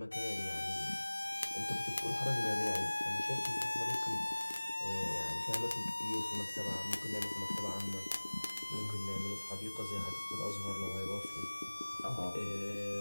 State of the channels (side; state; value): both; inverted; correlation -1.00